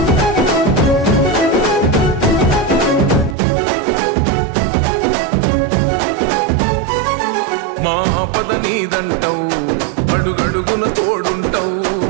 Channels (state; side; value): drops out; left; at 3.4 s